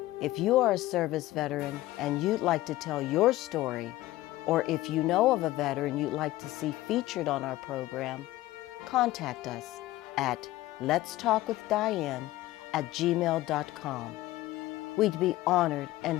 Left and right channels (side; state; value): right; quieter; 16.6 dB